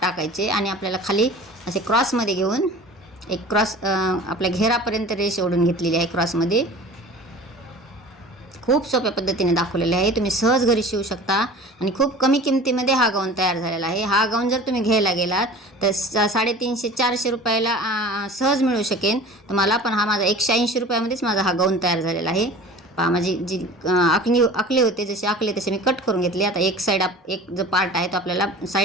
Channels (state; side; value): normal; both; correlation 0.41